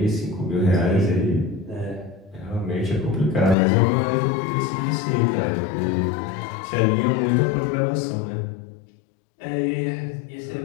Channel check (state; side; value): drops out; right; at 3.6 s